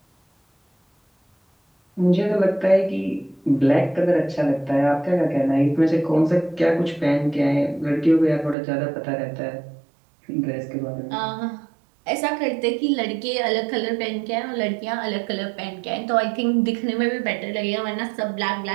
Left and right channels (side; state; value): left; drops out; at 8.6 s